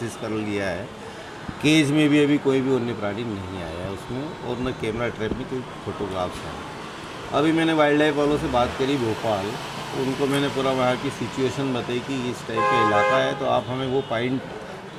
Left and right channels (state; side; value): identical; both; correlation 1.00